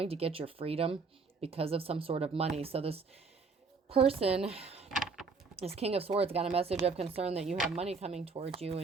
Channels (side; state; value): left; quieter; 4.6 dB